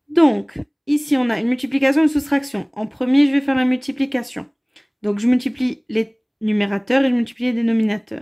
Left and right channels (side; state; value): both; identical; correlation 1.00